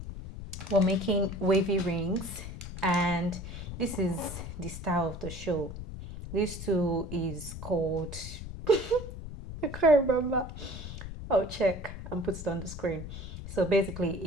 we're making wavy rings and this is the style of the show. This tool is called I can't remember. I'll check and put it on the screen. So basically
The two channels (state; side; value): noise; left; rumble, 9 dB below the sound